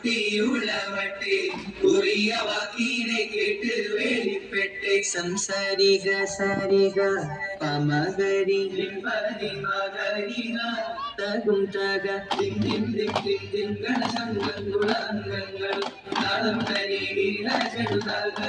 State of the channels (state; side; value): identical; both; correlation 1.00